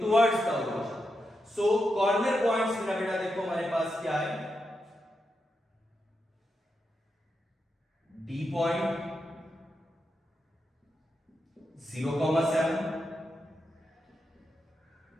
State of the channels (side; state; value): both; normal; correlation 0.86